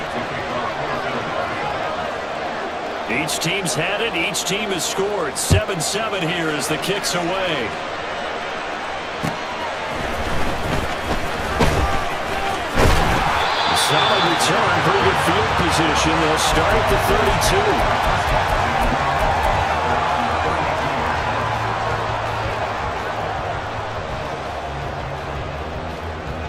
Each team's had it. Each team has scored. 7-7 here as the kick's away. Solid return, pretty good field position. They'll start at the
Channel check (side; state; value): both; identical; correlation 1.00